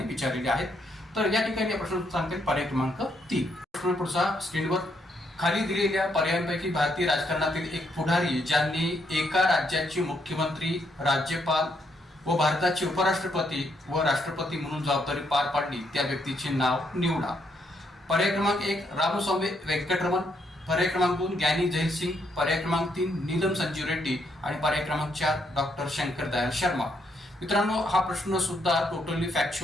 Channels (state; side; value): normal; both; correlation 0.75